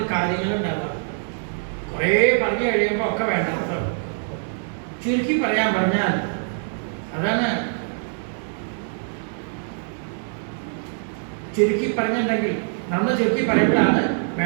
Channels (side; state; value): left; silent; 63 dB below the other